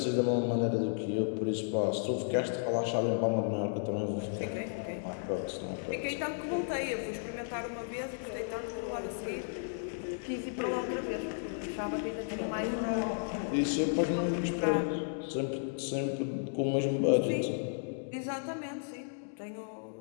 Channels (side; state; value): right; silent; digital silence